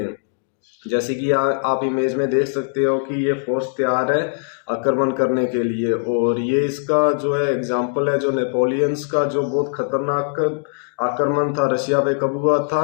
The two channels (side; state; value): right; silent; digital silence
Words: जैसे कि आप इमेज में देख सकते हो कि ये फोर्स तैयार है आक्रमण करने के लिए। और ये इसका जो है एग्जाम्पल है, जो नेपोलियंस का जो बहुत खतरनाक आक्रमण था रशिया पे, कब हुआ